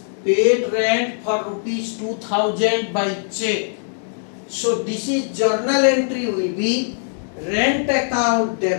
Paid rent for rupees 2,000 by check. So this is journal entry will be rent account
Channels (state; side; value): silent; right; digital silence